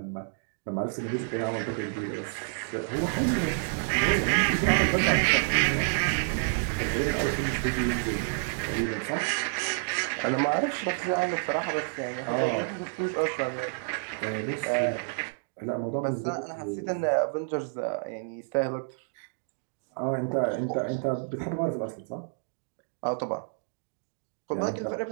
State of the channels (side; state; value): left; silent; digital silence